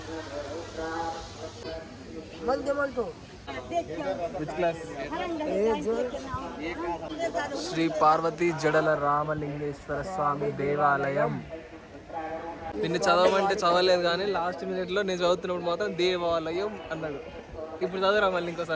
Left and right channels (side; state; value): both; identical; correlation 1.00